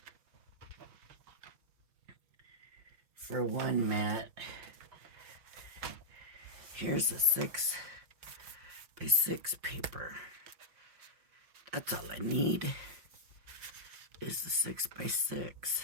for one mat. Here's a 6x6 paper. That's all I need is the 6x6.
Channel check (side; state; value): left; late; 5.6 ms